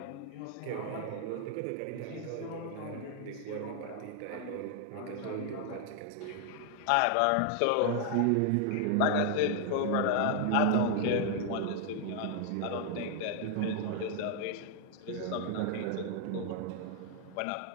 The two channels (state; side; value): different; both; correlation 0.00